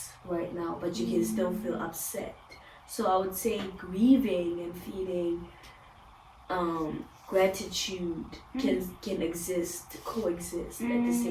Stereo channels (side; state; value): both; identical; correlation 1.00